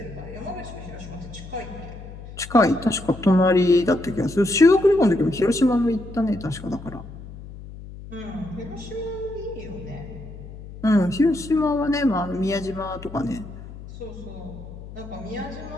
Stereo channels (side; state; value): left; noise; hum, 14 dB below the sound